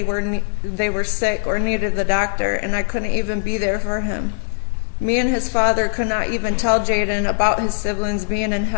were sick or needed the doctor, and I couldn't even be there for him. Me and his father could not even tell Jaden about his siblings being in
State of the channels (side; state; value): right; silent; digital silence